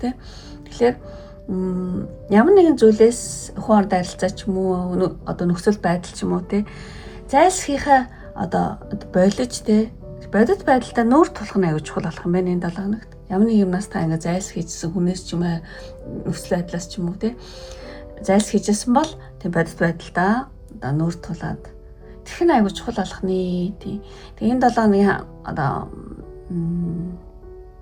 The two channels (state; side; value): identical; both; correlation 1.00